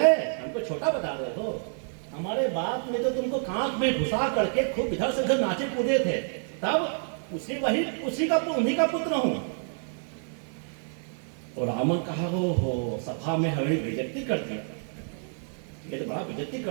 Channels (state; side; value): silent; left; 59 dB below the other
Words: हमको छोटा बता रहे हो, हमारे बाप ने तो तुमको कांख में घुसा करके खूब इधर से उधर नाचे कूदे थे, तब उन्हीं का पुत्र हूं। और रावण कहा, हो सभा में हमें बेइज्जती कर दिया, ये तो बड़ा बेइज्जती